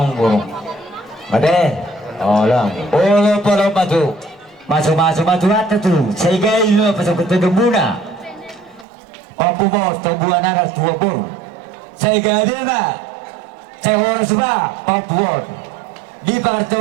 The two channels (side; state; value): left; drops out; at 8.8 s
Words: boro. Made. Oh, lang. Oh, pala matu. Masuk at tu. Sehingga itu pasok ke muna. Pampu mo tubuhan na tua bor. Sehingga dia na. Saya oras ba pampuon. Di